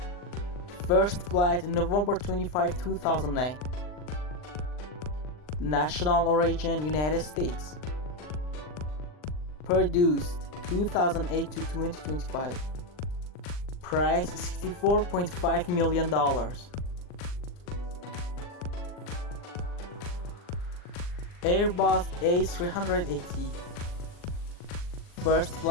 First flight November 25, 2009. National origin United States. Produced 2008 to 2025. Price $64.5 million. Airbus A380. First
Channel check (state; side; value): late; right; 39 ms